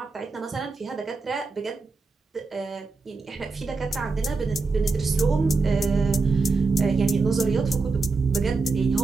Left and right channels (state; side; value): quieter; left; 4.1 dB